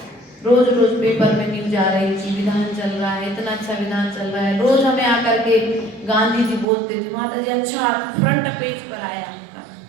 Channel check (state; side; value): drops out; left; at 6.7 s